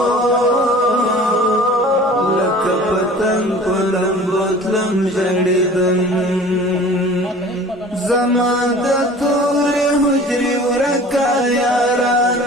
لکه پتنګ په لمبو تلم جړیدم زما د تورې حجرې ورکه یاره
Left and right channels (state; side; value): normal; both; correlation 0.44